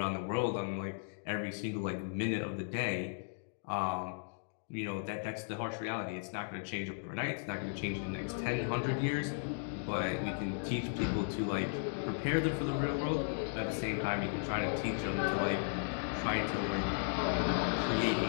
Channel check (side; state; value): right; silent; digital silence